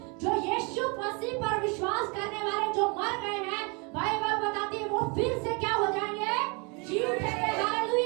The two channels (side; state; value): left; quieter; 31.5 dB